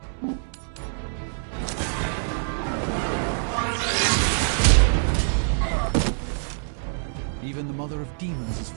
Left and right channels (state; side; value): silent; left; 62 dB below the other